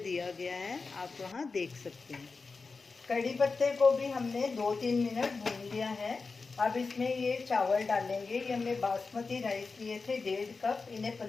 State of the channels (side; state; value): right; quieter; 4.3 dB